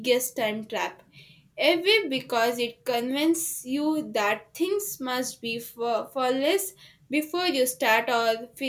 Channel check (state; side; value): identical; both; correlation 1.00